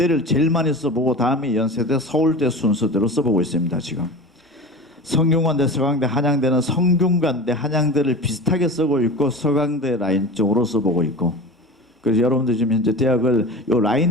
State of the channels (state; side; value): normal; both; correlation 0.33